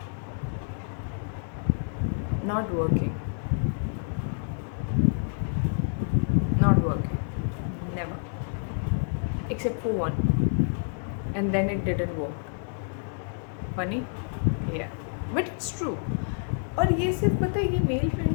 not working. Not working. Never. Except for one. And then it didn't work. Funny? Yeah. But it's true. और ये सिर्फ पता है, ये mail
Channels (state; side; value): silent; right; 59 dB below the other